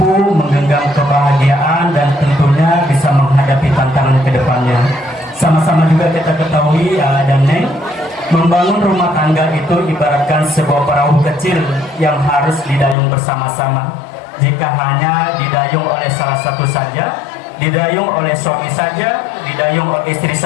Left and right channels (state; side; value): drops out; right; at 13.0 s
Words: menggenggam kebahagiaan dan tentunya bisa menghadapi tantangan ke depannya. Sama-sama juga kita ketahui AA dan Neng, membangun rumah tangga itu ibaratkan sebuah perahu kecil yang harus didayung bersama-sama. Jika hanya didayung oleh salah satu saja, didayung oleh suami saja, didayung oleh istri